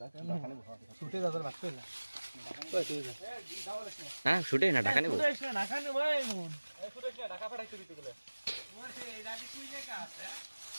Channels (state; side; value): inverted; both; correlation -1.00